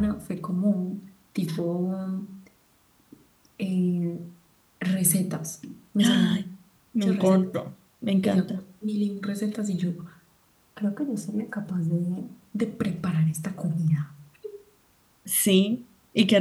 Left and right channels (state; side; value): identical; both; correlation 1.00